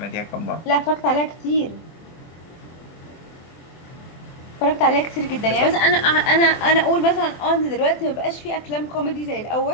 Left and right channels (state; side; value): late; right; 24 ms